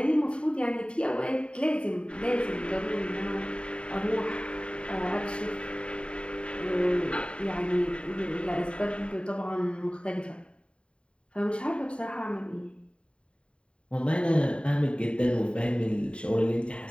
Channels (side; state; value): right; late; 0.056 ms